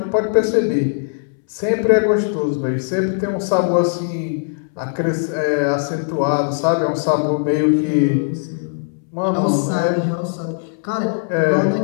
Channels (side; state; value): right; silent; 66 dB below the other